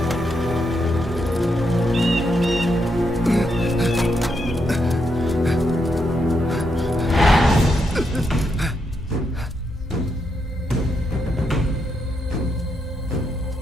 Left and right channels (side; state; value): both; normal; correlation 0.81